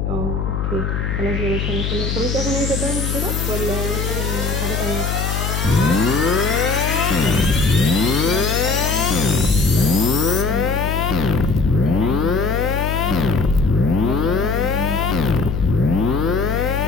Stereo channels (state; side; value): noise; left; hum, 1 dB below the sound